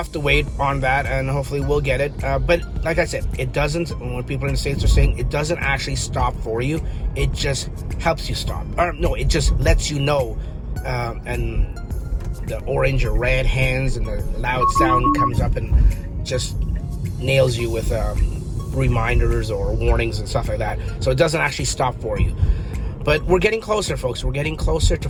to wait on that, and hopefully we'll get it. But like I said, it doesn't, when people in the States are saying, it doesn't actually stop for you. It just helps you stop. Or no, it just lets you know, and the orange or red hands and the loud sound comes up and just nails you with reminders or warnings and stuff like that. So it doesn't actually stop for you. But we're getting closer, folks. We're getting closer to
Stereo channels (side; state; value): both; identical; correlation 1.00